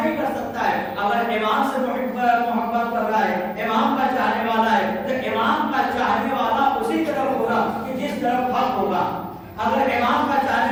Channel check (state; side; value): identical; both; correlation 1.00